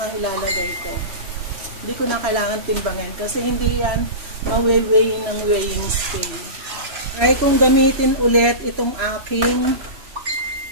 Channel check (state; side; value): late; left; 3.0 ms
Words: ilalagay ko. Hindi ko na kailangan timbangin kasi hindi yan ma-weigh ng weighing scale. Try kong gamitin ulit itong aking